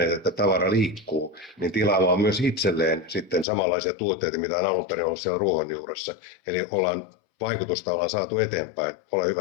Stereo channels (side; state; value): right; drops out; at 3.5 s